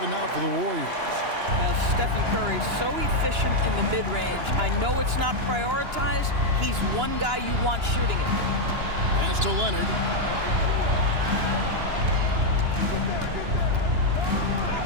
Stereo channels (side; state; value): left; late; 2.9 ms